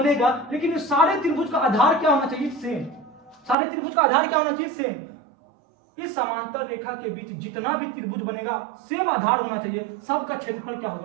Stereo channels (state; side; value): drops out; left; at 3.6 s